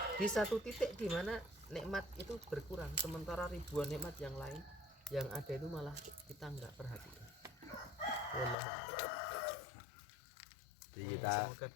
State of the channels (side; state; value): right; drops out; at 8.6 s